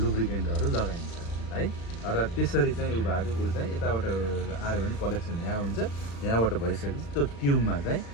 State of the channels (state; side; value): late; right; 35 ms